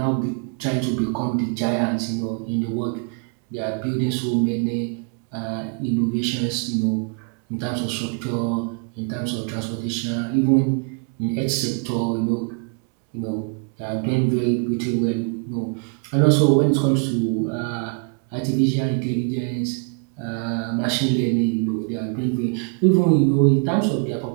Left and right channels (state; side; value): quieter; left; 37.9 dB